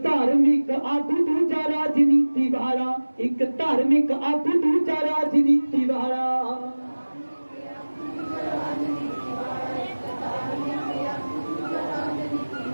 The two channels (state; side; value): inverted; both; correlation -1.00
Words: धार्मिक आगू दूजा राजनीति वाला। एक धार्मिक आगू दूजा राजनीति वाला।